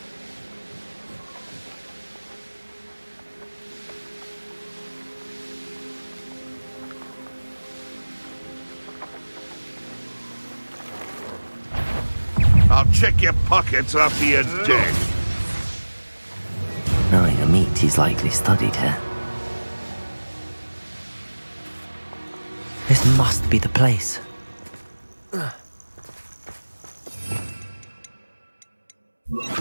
I'll check your pockets after you're dead. Knowing a meat he's likely studied here. This must be the place.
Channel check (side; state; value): both; inverted; correlation -1.00